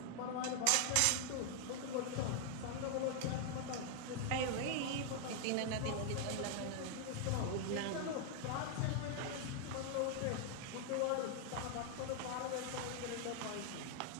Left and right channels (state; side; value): different; both; correlation 0.00